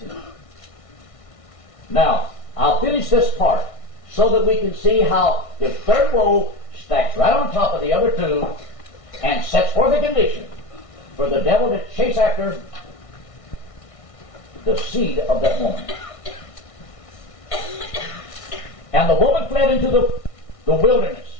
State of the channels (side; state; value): right; late; 1.6 ms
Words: to. Now, I'll finish this part so that we can see how the third woe stacks right on top of the other two and sets forth a condition for the devil to chase after the seed of that woman. And the woman fled into the wilderness,